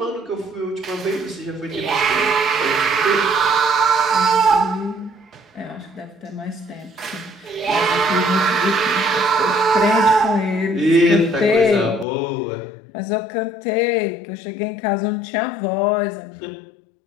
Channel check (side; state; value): right; drops out; at 12.1 s